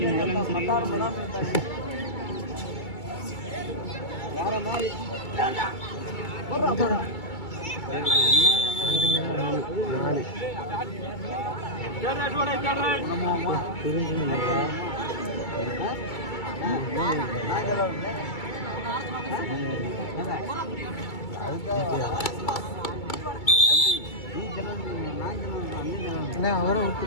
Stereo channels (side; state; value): right; late; 2.3 ms